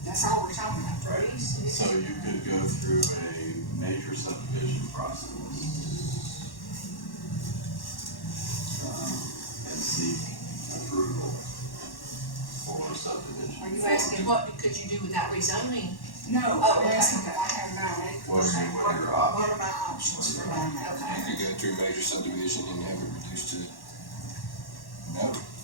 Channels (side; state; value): right; late; 1.1 ms